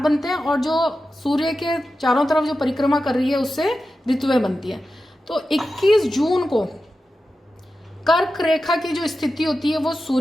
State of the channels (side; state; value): both; normal; correlation 0.92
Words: हैं, और जो सूर्य के चारों तरफ जो परिक्रमा कर रही है, उससे ऋतुएं बनती हैं। तो 21 जून को कर्क रेखा की जो स्थिति होती है, वो